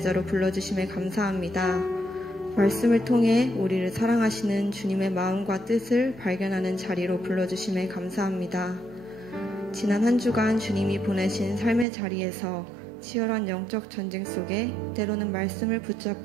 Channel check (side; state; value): left; drops out; at 11.9 s